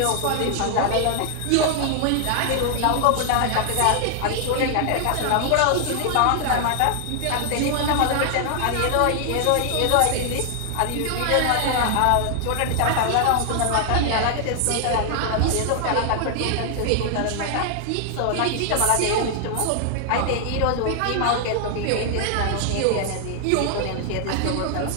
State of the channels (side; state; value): both; different; correlation 0.00